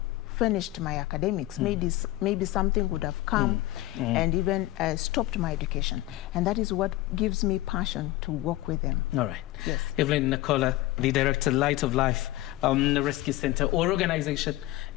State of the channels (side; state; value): right; quieter; 17.2 dB